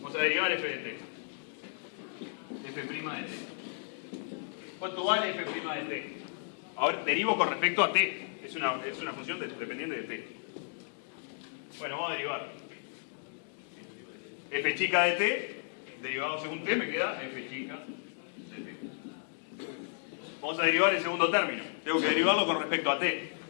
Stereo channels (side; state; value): right; silent; digital silence